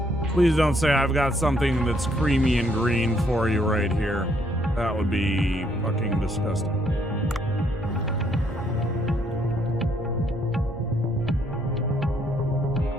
Please don't say I've got something that's creamy and green for you right here. That would be fucking disgusting.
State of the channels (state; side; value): normal; both; correlation 0.69